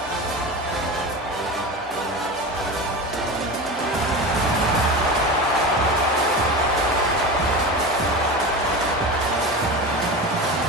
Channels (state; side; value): normal; both; correlation 0.27